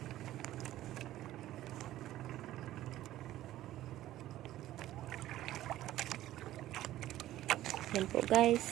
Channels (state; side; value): quieter; left; 14.3 dB